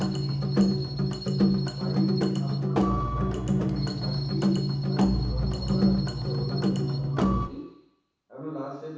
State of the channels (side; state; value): both; identical; correlation 1.00